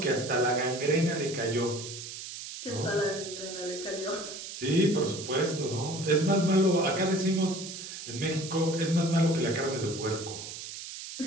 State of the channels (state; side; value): noise; right; hiss, 10 dB below the sound